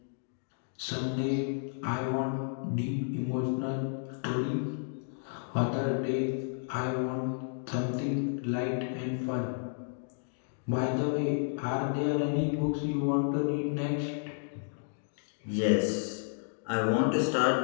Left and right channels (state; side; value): silent; right; digital silence